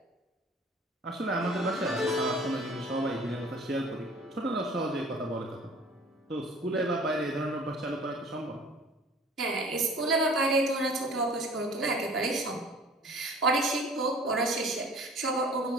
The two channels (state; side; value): normal; both; correlation 0.48